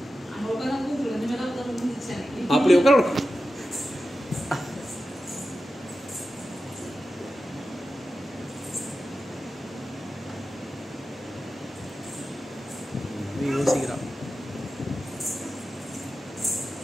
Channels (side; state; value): both; normal; correlation 0.92